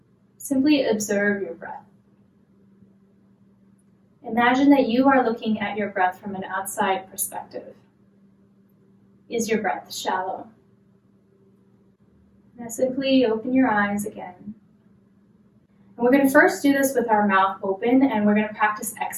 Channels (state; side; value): identical; both; correlation 1.00